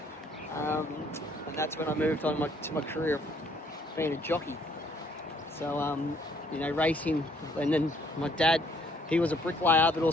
And that's when I moved on to my career of being a jockey. So, racing. And then my dad, he was a bricklayer, but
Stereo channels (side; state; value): both; normal; correlation 0.64